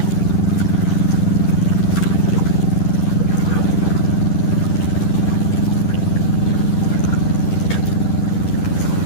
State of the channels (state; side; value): late; right; 10 ms